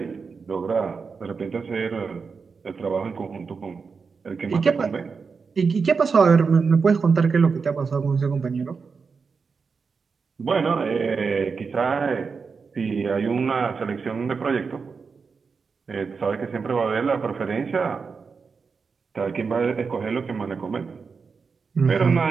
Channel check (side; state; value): left; quieter; 5.2 dB